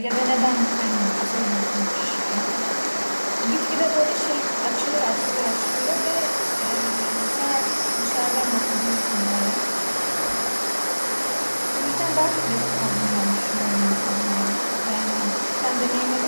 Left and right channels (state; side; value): inverted; both; correlation -1.00